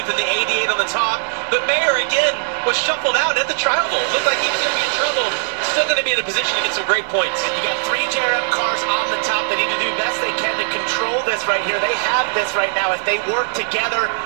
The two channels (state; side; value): silent; left; digital silence